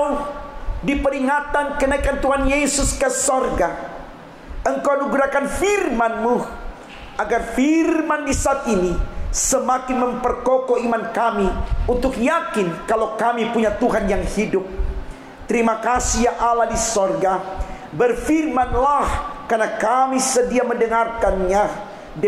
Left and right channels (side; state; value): both; identical; correlation 1.00